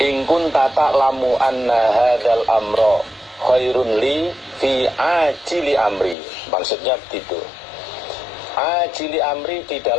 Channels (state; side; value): drops out; right; at 6.2 s